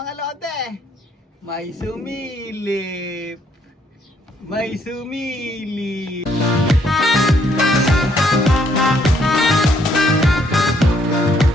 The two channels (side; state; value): both; normal; correlation 0.69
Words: lodi, may sumilip,